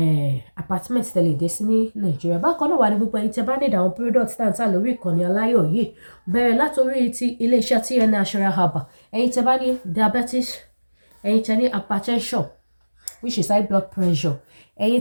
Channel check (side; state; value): both; inverted; correlation -1.00